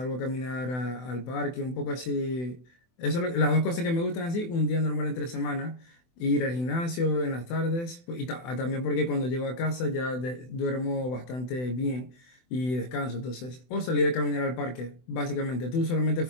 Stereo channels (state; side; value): late; right; 24 ms